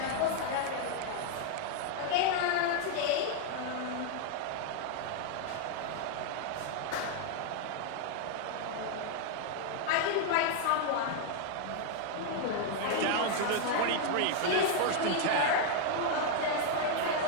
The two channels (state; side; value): different; both; correlation 0.00